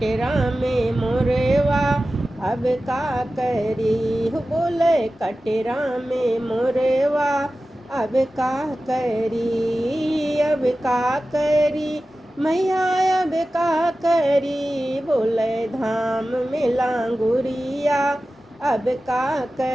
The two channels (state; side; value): normal; both; correlation 0.95